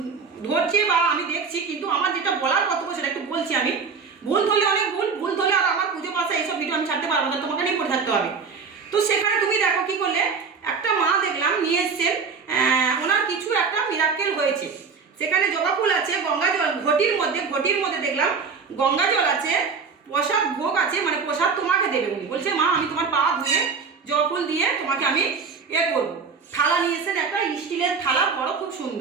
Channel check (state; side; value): quieter; left; 5.4 dB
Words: ধরছে বা আমি দেখছি, কিন্তু আমার যেটা বলার কর্তব্য সেটা একটু বলছি আমি। ভুল ধরলে অনেক ভুল ধরলে, আর আমার পুজো পাশা এইসব ভিডিও আমি ছাড়তে পারবো না, তোমাকে নিয়ে পড়ে থাকতে হবে। তো সেখানে তুমি দেখো কি করলে, একটা মা দেখলাম নিয়ে এসছেন, ওনার কিছু একটা মিরাকেল হয়েছে। সেখানে জবা ফুল আছে, গঙ্গা জল ঘটির মধ্যে দেখলাম গঙ্গা জল আছে, প্রসাদ ভোগ আছে, মানে প্রসাদ তোমাকে দেবে। উনি বলছে মা আমি তোমার পা ধুয়ে জবা ফুল দিয়ে তোমাকে আমি করবো। থালা নিয়ে এসেছেন, একটা স্টিলের থালা, বড়, খুব